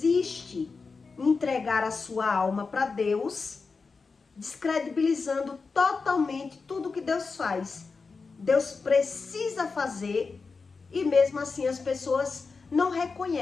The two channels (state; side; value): quieter; right; 4.5 dB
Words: em entregar a sua alma para Deus, descredibilizando totalmente tudo que Deus faz. Deus precisa fazer, e mesmo assim as pessoas não